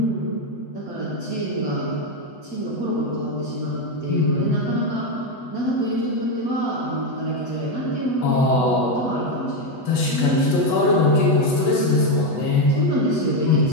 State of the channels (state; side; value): late; right; 8.1 ms